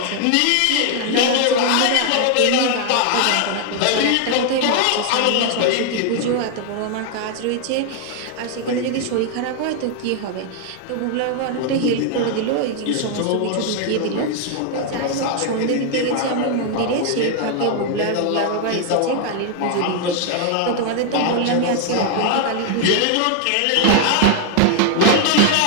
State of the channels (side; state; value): both; different; correlation 0.00